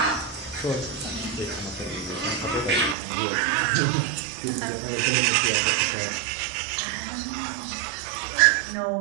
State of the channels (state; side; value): drops out; left; at 3.0 s